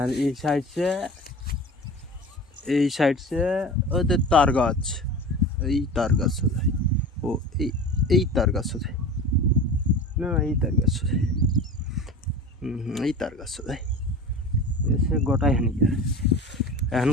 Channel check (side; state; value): both; normal; correlation 0.35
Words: এই সাইড সে ওদের তার গাছ, এই তার গাছ সোজাই ও এই তার গাছ সোজাই না, এই তার গাছ সোজাই এই তার গাছ সোজাই এসে গোটাই হানিকার। এখন